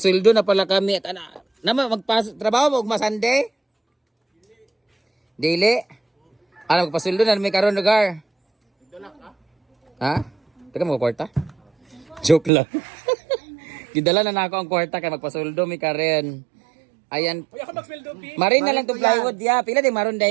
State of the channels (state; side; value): drops out; left; at 12.5 s